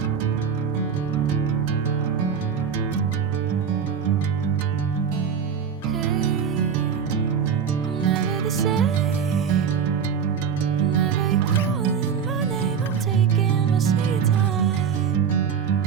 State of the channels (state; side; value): quieter; left; 7.0 dB